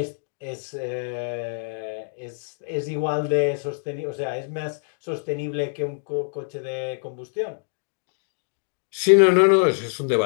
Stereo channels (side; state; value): right; silent; digital silence